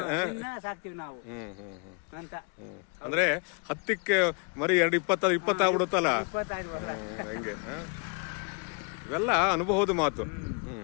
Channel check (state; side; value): quieter; right; 37.8 dB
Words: ಸಾಕ್ತಿವಿ ನಾವು ಅಂತ. ಅಂದ್ರೆ 10ಕ್ಕೆ ಮರಿ 20 ಆಗ್ಬಿಡುತ್ತಲ್ಲ ಹಂಗೆ. ಇವೆಲ್ಲ ಅನುಭವದ ಮಾತು.